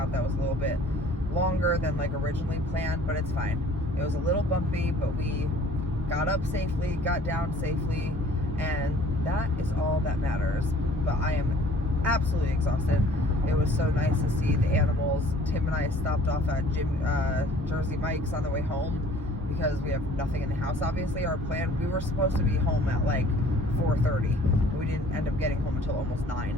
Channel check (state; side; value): normal; both; correlation 0.53